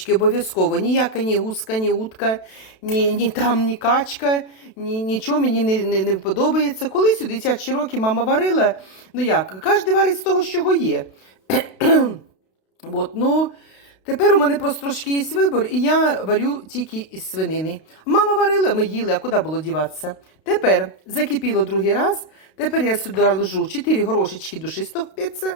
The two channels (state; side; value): late; right; 32 ms